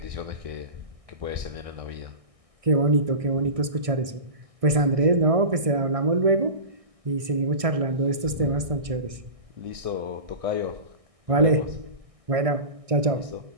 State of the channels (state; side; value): late; left; 1.6 ms